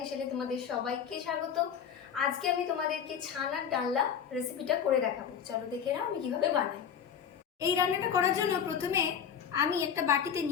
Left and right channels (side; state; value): right; quieter; 7.9 dB